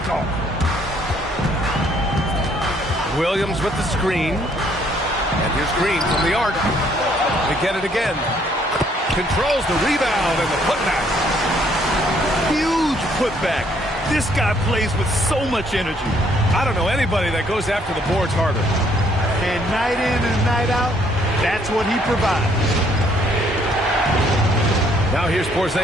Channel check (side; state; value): both; normal; correlation 0.66